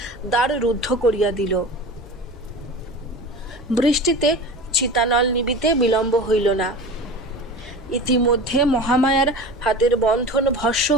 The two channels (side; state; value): both; normal; correlation 0.33